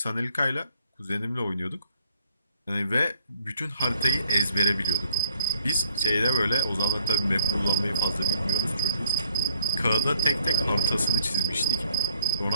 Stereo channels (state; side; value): inverted; both; correlation -0.63